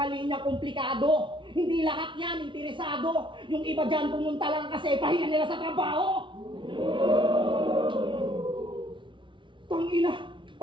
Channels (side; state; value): left; late; 0.24 ms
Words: linya komplikado. Hindi lahat yan interesado. Yung iba dyan pumunta lang kasi pahinga nila sa trabaho. Tangina!